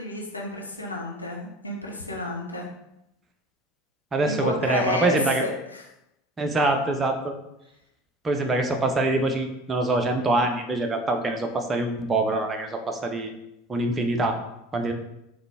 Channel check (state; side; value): normal; both; correlation 0.44